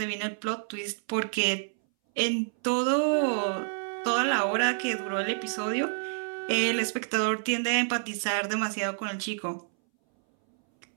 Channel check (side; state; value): left; silent; 59 dB below the other